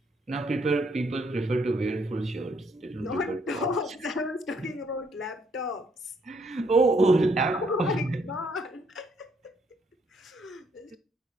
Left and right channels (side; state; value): both; normal; correlation 0.70